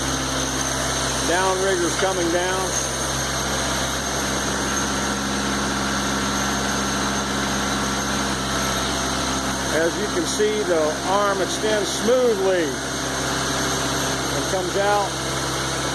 Downrigger's coming down. As you can see, the arm extends smoothly and comes out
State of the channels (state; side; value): identical; both; correlation 1.00